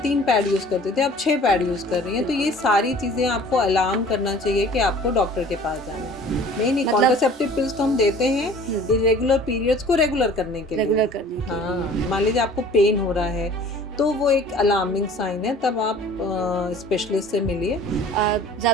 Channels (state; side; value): normal; both; correlation 0.48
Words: पैड यूज़ करते थे, अब 6 पैड यूज़ कर रही हैं, तो ये सारी चीज़ें आपको अलार्म करना चाहिए कि आपको डॉक्टर के पास जाना है। नहीं, मतलब कॉन्ट्रासेप्टिव पिल्स तो हम देते हैं इर्रेगुलर पीरियड्स को रेगुलर करने के लिए। रेगुलर करने के लिए। हाँ, मान लीजिए आपको पेन हो रहा है, तो वो एक अलार्मिंग साइन है, तब आप स्पेशलिस्ट से मिलिए।